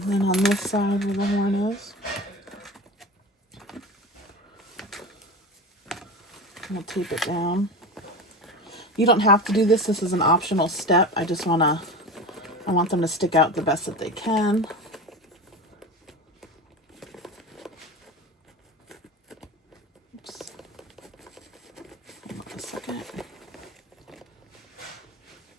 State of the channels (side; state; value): both; normal; correlation 0.29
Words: then on this side where the horn is. We'll tape it down. You don't have to do this. This is an optional step. I want them to stick out the best that they can. Oops. Hold on a second.